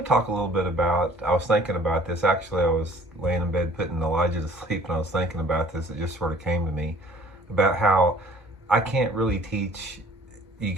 talk a little bit about, I was thinking about this, actually I was laying in bed putting Elijah to sleep and I was thinking about this. It just sort of came to me about how I can't really teach you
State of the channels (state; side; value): normal; both; correlation 0.53